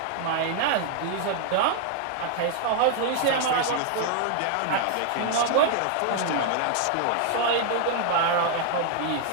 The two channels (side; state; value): both; different; correlation 0.00